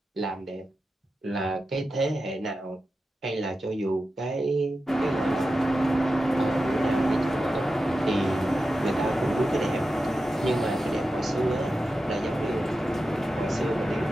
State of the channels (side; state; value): both; normal; correlation 0.91